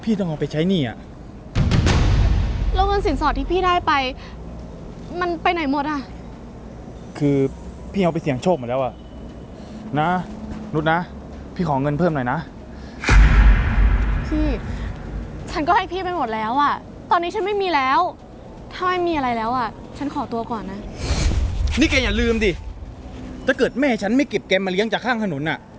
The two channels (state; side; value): identical; both; correlation 1.00